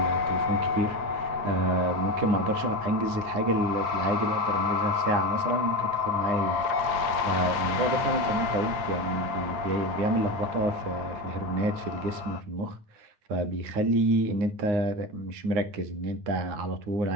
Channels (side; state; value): left; late; 8.9 ms